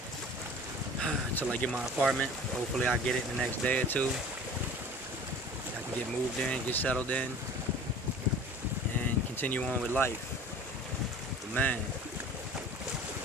until I get my apartment. Hopefully I get it in the next day or two. I can get moved in, get settled in, and continue on with life. But man,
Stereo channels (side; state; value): both; normal; correlation 0.43